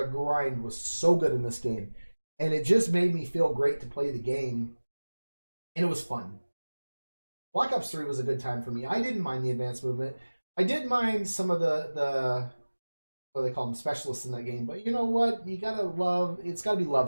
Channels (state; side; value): inverted; both; correlation -1.00